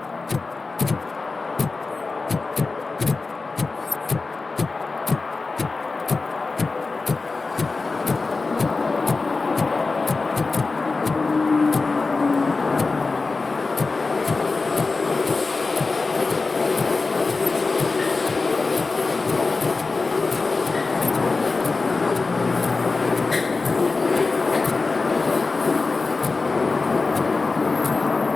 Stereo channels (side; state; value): right; quieter; 3.9 dB